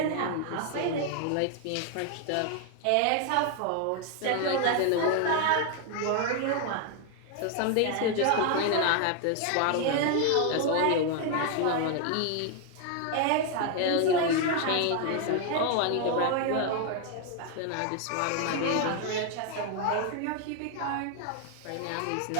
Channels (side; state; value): both; different; correlation 0.00